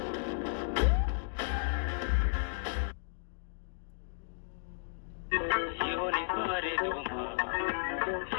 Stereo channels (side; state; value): right; silent; digital silence